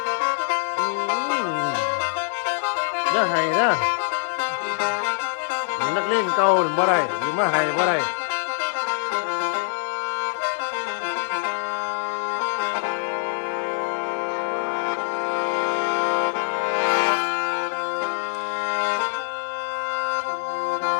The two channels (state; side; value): silent; right; 62 dB below the other